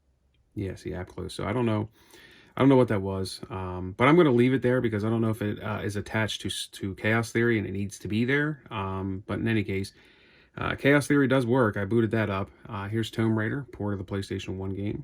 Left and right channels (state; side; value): identical; both; correlation 1.00